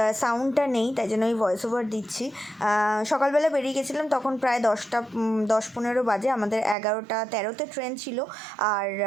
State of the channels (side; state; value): left; drops out; at 6.8 s